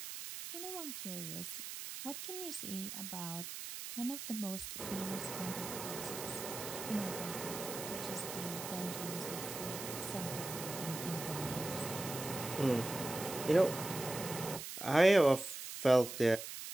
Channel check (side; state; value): right; noise; hiss, 8 dB below the sound